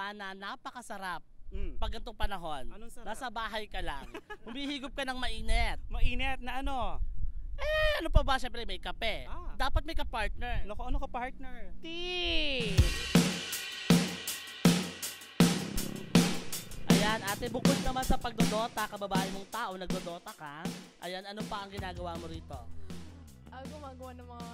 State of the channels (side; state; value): both; identical; correlation 1.00